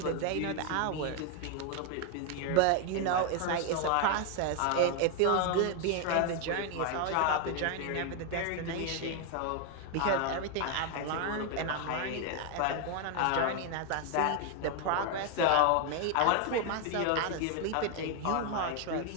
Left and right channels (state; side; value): different; both; correlation 0.01